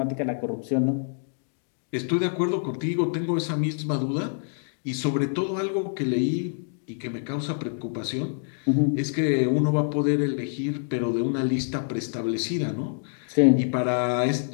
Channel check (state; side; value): silent; right; digital silence